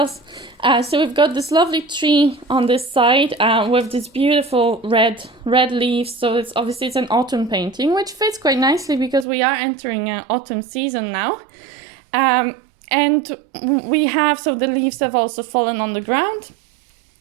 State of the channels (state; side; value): drops out; left; at 9.2 s